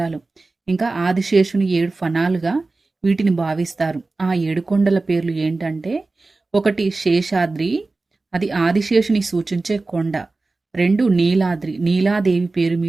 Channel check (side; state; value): left; quieter; 3.5 dB